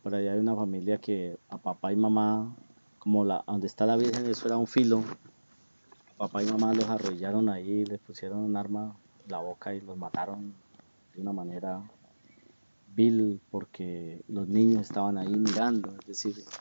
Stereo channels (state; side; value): inverted; both; correlation -1.00